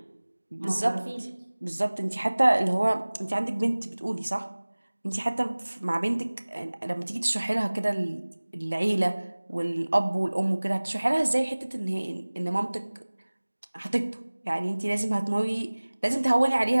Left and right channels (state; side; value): inverted; both; correlation -1.00